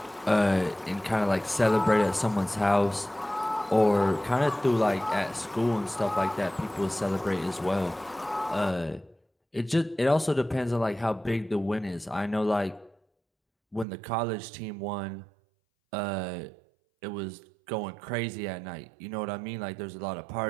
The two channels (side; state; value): left; drops out; at 13.9 s